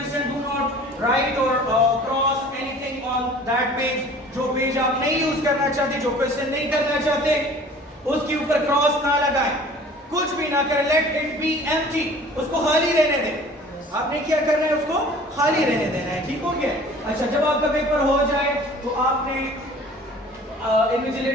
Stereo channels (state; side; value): normal; both; correlation 0.47